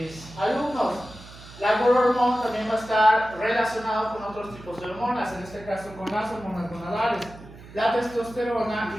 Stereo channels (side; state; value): right; noise; hum, 18 dB below the sound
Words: alumnos, la growth hormone también va a estar relacionado con otros tipos de hormonas, en este caso con las hormonas gonadales, la testosterona